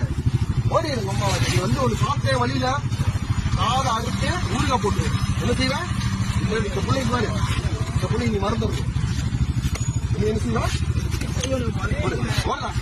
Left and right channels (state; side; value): identical; both; correlation 1.00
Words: ஓடி அம்மா நீ வந்து ஒரு சாப்பிட்டே வழியில காதை அறுத்து ஊருகா போட்டு என்ன செய்வேன் இந்த பிள்ளைக்கு பாரு இந்த பிள்ளை நீ மறந்துடும் நீ என்ன செய்வா